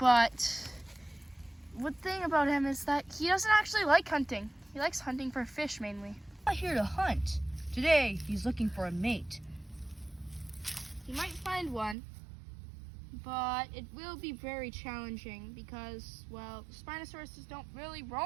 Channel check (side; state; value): left; drops out; at 12.0 s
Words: one thing about him is that he doesn't actually like hunting. He likes hunting for fish mainly. Not here to hunt. Today, he's looking for a mate. He might find one, but it will be very challenging because, well, Spinosauruses don't really